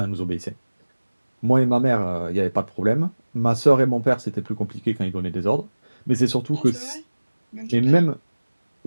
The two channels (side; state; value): both; inverted; correlation -1.00